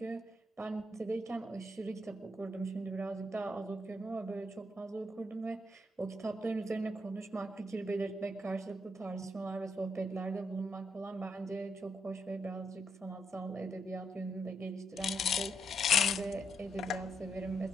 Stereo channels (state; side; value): normal; both; correlation 0.78